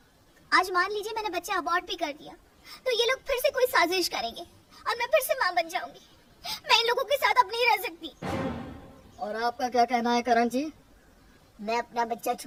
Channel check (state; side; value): identical; both; correlation 1.00